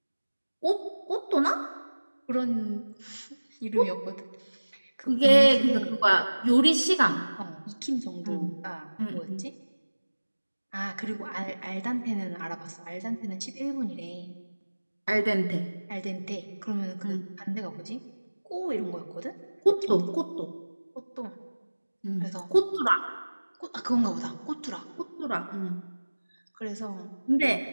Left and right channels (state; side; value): inverted; both; correlation -1.00